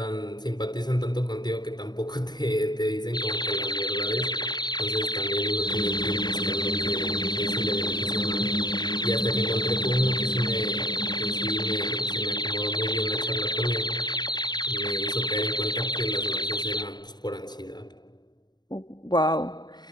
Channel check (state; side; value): late; right; 0.20 ms